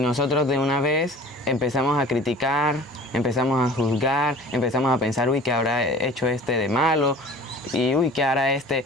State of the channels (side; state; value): both; normal; correlation 0.44